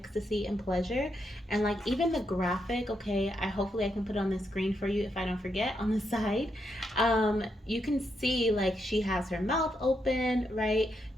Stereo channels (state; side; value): normal; both; correlation 0.81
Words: and pleasure. And like even the graphic, okay, hopefully I can put it on the screen for you if I don't forget on the side. You can see like she has her mouth open, right?